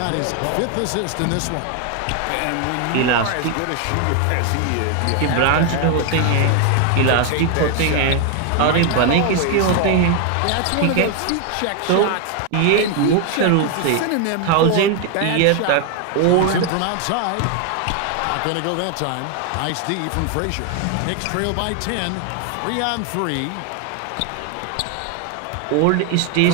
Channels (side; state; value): both; different; correlation 0.01